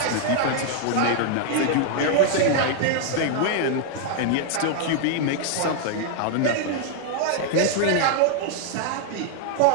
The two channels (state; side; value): different; both; correlation 0.00